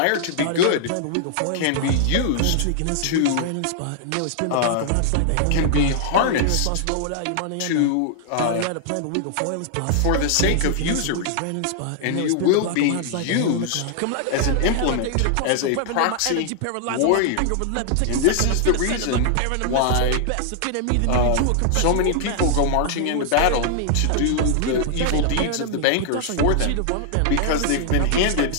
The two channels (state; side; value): different; both; correlation 0.00